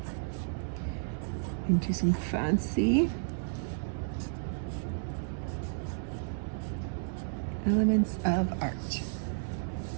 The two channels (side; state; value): left; silent; 56 dB below the other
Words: into some fancy elements of art.